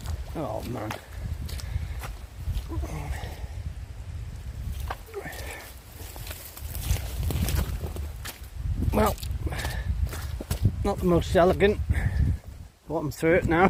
Oh man. Well, not the most elegant, but I'm through it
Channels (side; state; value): both; identical; correlation 1.00